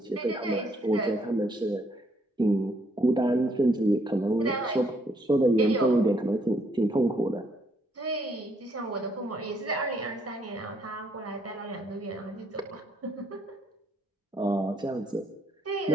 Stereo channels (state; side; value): normal; both; correlation 0.70